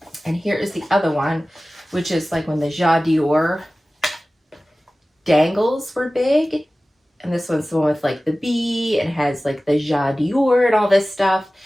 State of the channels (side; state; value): both; normal; correlation 0.97